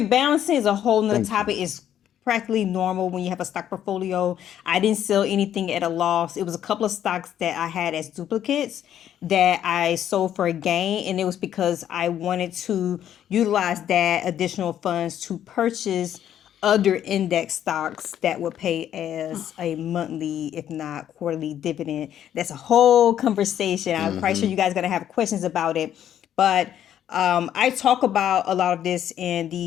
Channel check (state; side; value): quieter; right; 10.5 dB